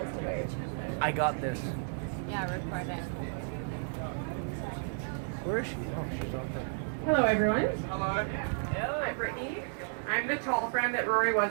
I got this. Yeah, record it. Where is she? Oh, she's out there. Hello, everyone. Hello. Hello. I'm Brittany. I'm the tall friend that Rory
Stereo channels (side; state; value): left; silent; digital silence